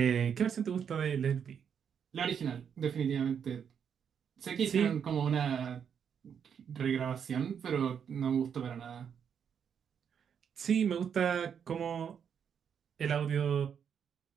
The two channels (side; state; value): left; quieter; 7.6 dB